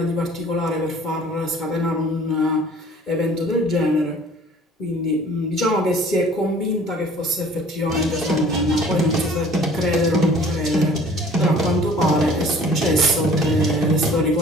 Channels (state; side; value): normal; both; correlation 0.51